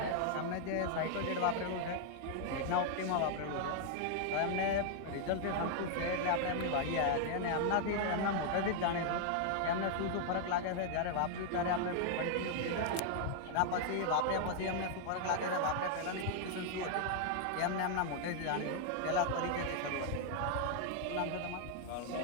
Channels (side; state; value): both; different; correlation 0.00